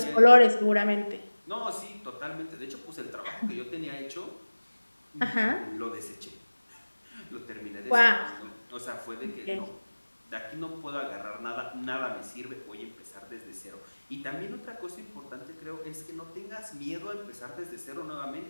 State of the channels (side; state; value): both; inverted; correlation -1.00